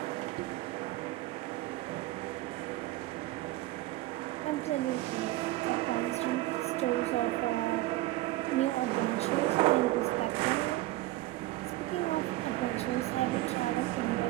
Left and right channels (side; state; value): left; quieter; 17.3 dB